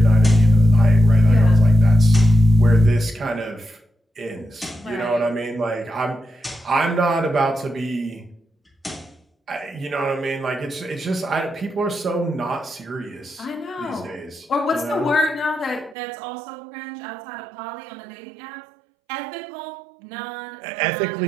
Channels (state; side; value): drops out; left; at 16.0 s